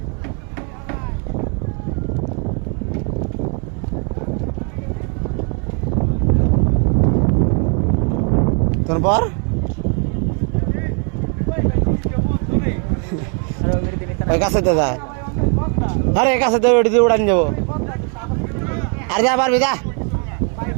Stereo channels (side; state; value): left; quieter; 39.5 dB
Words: তোর পর ওই কাছেতে যায় আরে কাছেতে ওটি দিয়ে উড়ান যাবো আর যা পারবি যা